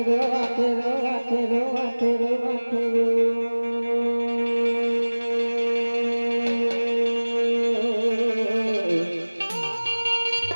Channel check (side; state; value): both; inverted; correlation -1.00